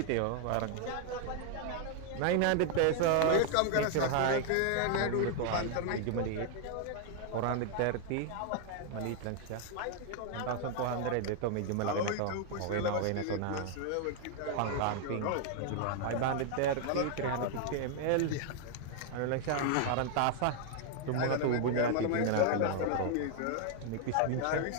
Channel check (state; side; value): different; both; correlation 0.00